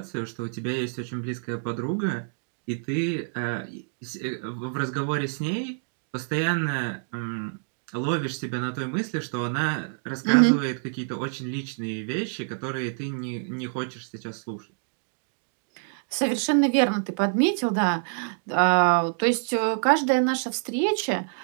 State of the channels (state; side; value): silent; left; digital silence